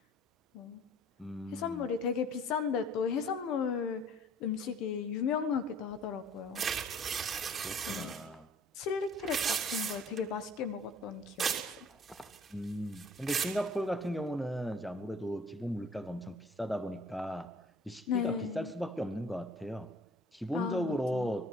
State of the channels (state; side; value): normal; both; correlation 0.53